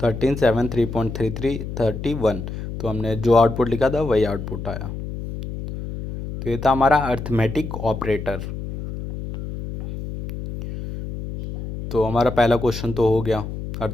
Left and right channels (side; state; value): left; noise; hum, 8 dB below the sound